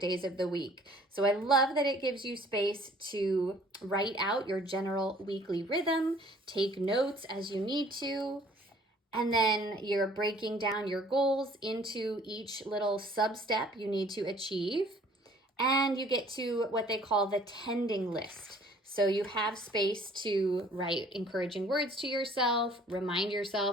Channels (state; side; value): normal; both; correlation 0.55